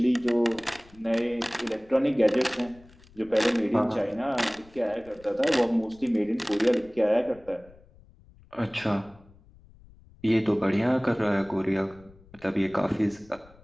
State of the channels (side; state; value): left; noise; rumble, 25 dB below the sound